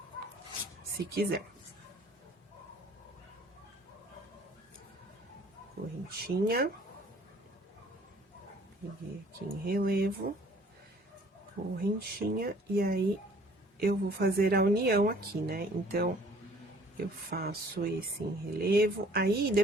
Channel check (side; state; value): both; normal; correlation 0.55